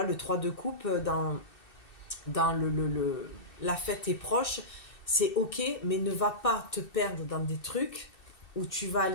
le 3 de coupe, dans la fête est proche, c'est ok, mais ne va pas te perdre dans des trucs où tu vas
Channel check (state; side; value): late; right; 2.7 ms